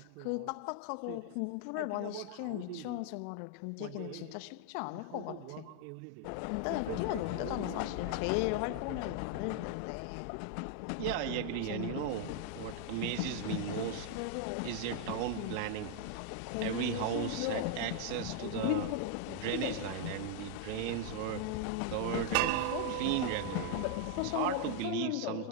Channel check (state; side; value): different; both; correlation 0.00